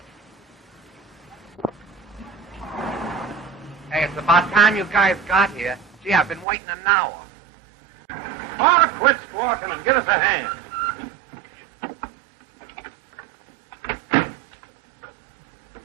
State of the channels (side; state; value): left; drops out; at 6.5 s